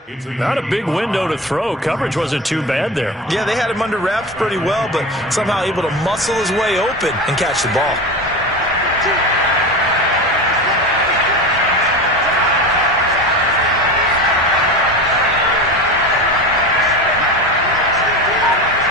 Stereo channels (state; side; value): normal; both; correlation 0.26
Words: Not a big window to throw. Coverage wasn't too bad there. Yeah, they had him under wraps pretty well, but somehow able to muscle his way open and catch the ball.